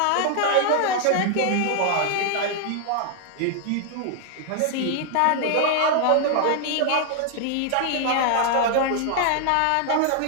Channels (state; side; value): different; both; correlation 0.00